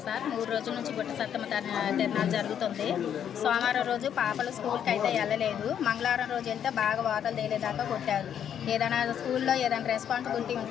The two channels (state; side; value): quieter; right; 9.1 dB